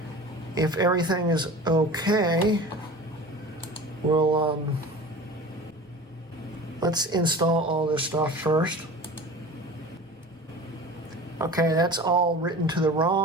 If everything is okay, we'll let's install all this stuff first. Okay, that's all written to the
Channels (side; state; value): both; normal; correlation 0.37